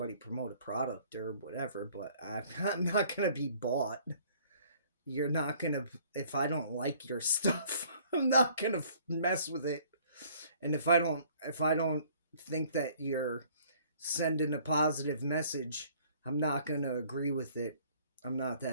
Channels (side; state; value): both; inverted; correlation -0.57